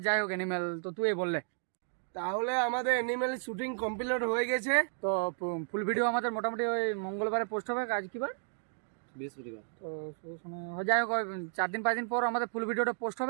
যাই হোক অ্যানিমেল তো তুই বললে। তাহলে আমাদের অ্যানিমেল শুটিং কমপ্লিট হয়ে গেছে। তো ফুল ভিডিও আমাদের মোটামুটি ওই মঙ্গলবারে পোস্ট হবে। আজ কি বার? বৃহস্পতিবার। তো যাই হোক 4 দিন 5 দিন পর আমাদের ফুল ভিডিওটা পোস্ট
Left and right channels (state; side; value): silent; left; digital silence